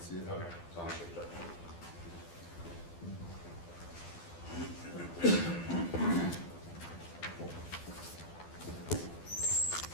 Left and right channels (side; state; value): right; late; 12 ms